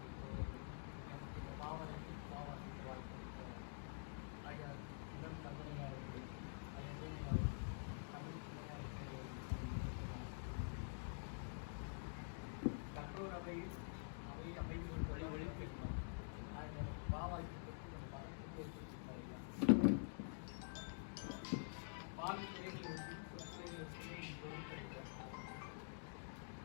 நமக்கு இந்த பாவனைக்கு பாவாசிக்க வாய்ப்பு ஐயா இடம் தந்தையாளர்கள் ஐயா தமிழ் கற்றோர் அவையில் அவை அமைதி வழி ஒழிப்பிருக்கோம் பாவாய்க்கு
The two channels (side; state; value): right; silent; digital silence